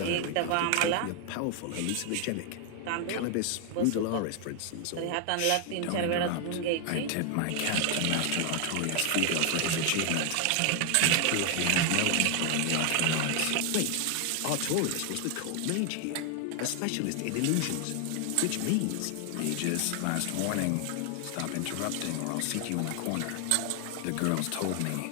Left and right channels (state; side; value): different; both; correlation 0.00